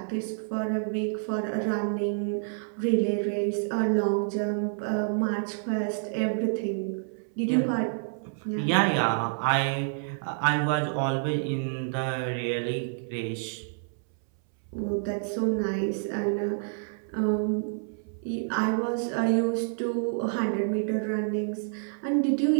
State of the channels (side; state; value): left; silent; 59 dB below the other